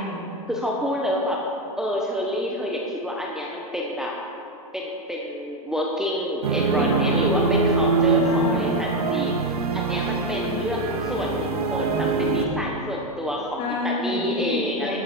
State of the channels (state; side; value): normal; both; correlation 0.11